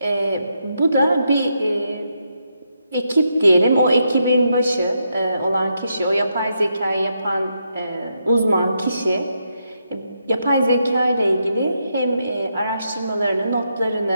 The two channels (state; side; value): inverted; both; correlation -0.81